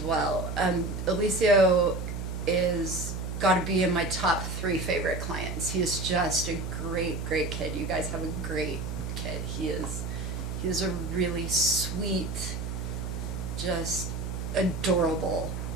Alicia is got to be in my top 3 favorite clients. He is just a great, great kid. You guys have a great kid. He is a really sweet, just adorable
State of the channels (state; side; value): noise; right; hum, 4 dB below the sound